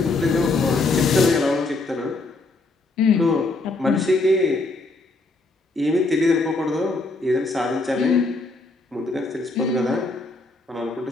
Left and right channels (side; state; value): right; quieter; 3.3 dB